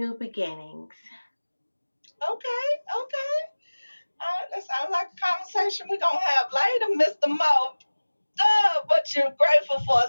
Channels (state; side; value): inverted; both; correlation -1.00